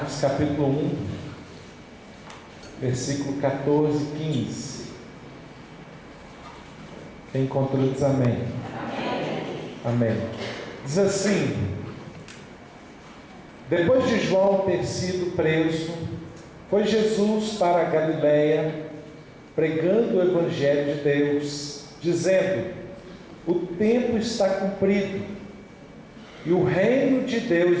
capítulo 1, versículo 14 e 15. Quem encontrou diz amém. Amém. Diz assim: depois de João ter sido preso, foi Jesus para a Galiléia, pregando o Evangelho de Deus, dizendo: o tempo está cumprido, e o reino de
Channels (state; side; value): identical; both; correlation 1.00